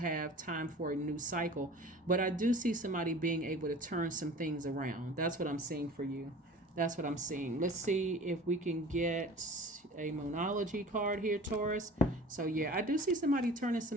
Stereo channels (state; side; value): normal; both; correlation 0.42